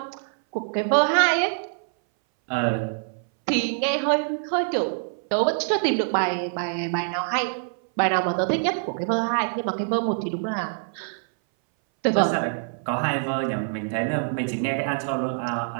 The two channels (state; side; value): silent; left; 60 dB below the other